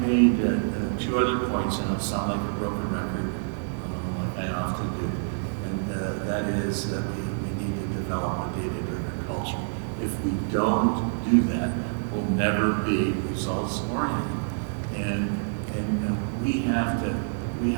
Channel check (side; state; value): left; silent; digital silence